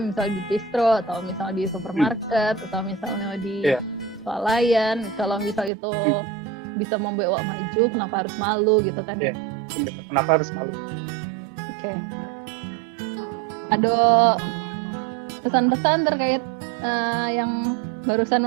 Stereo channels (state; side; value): drops out; left; at 5.7 s